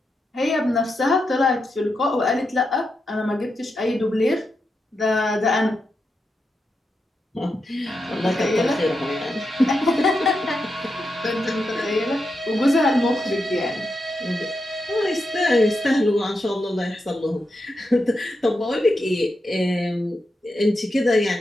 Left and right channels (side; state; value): both; normal; correlation 0.86